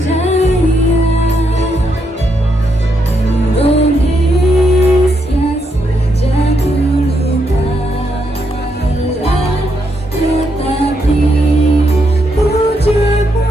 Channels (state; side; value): normal; both; correlation 0.79